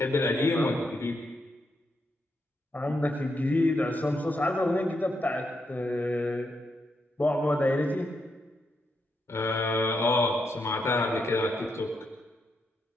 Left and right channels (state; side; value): normal; both; correlation 0.81